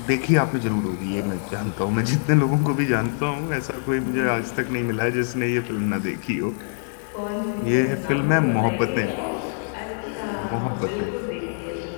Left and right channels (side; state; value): right; silent; digital silence